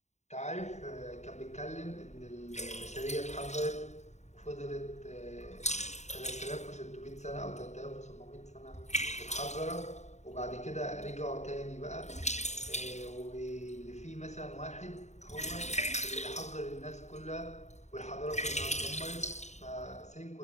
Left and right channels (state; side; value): late; right; 0.33 ms